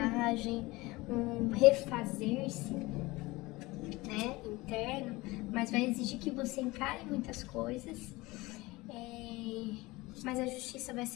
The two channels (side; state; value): right; quieter; 21.4 dB